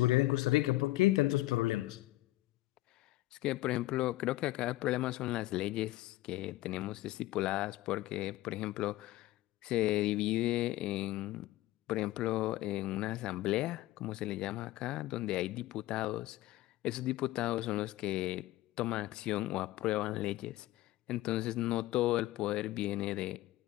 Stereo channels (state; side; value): quieter; right; 17.0 dB